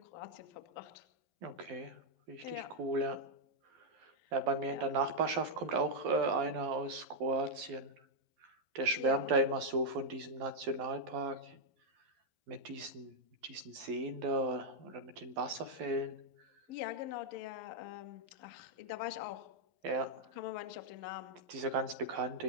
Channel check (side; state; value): left; late; 11 ms